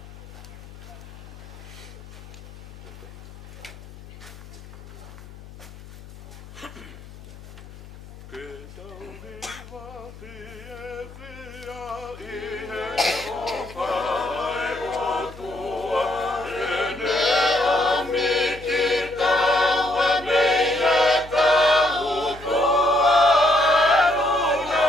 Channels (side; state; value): left; noise; hum, 17 dB below the sound